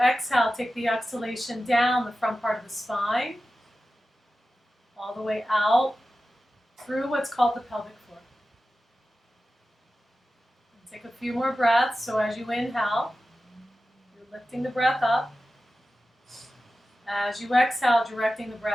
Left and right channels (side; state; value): both; normal; correlation 0.94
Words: take the exhalation down the front part of the spine, all the way out through what's called the pelvic floor. And take a few more breaths. So as you inhale, you're lifting the breath up. As you exhale, directing the